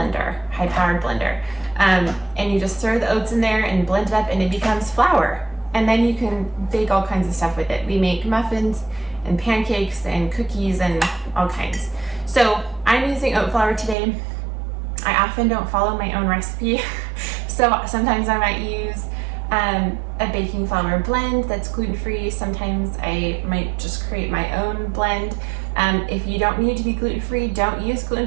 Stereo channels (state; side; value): drops out; left; at 14.0 s